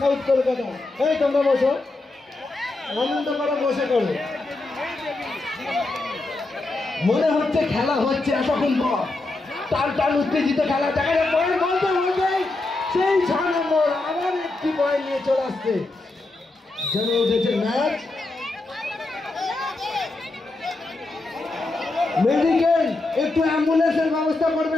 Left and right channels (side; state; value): right; quieter; 3.1 dB